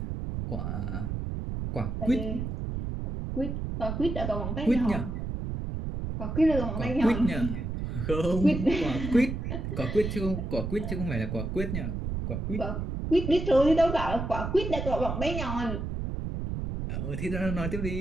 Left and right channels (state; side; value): noise; right; rumble, 4 dB below the sound